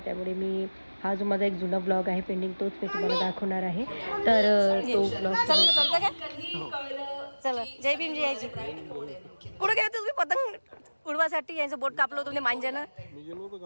मी हा जो माझा एक जुना ब्लॉग आहे पेंडिंग, तोच मी तुम्हाला दाखवणार आहे. तर तो ब्लॉग चला. जय भीम जयाजी. कुठं गेले तुम्ही पतंग उडवासाठी? यांचं बोट कापलं होतं मांजानं.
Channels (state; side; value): inverted; both; correlation -1.00